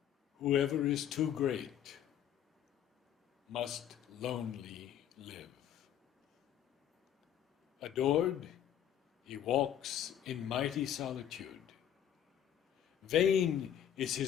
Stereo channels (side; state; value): right; quieter; 10.1 dB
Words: Whoever is too great must lonely live. Adored, he walks in mighty solitude. Vain is